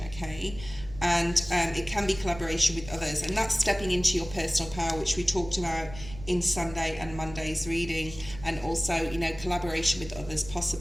okay? And it can be collaboration with others, and that's stepping into your personal power, which we talked about in Sunday and Monday's reading, and also, you know, collaboration with others,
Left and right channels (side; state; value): right; noise; rumble, 14 dB below the sound